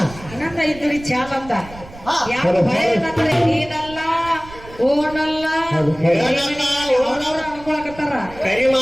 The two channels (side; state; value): right; noise; rumble, 17 dB below the sound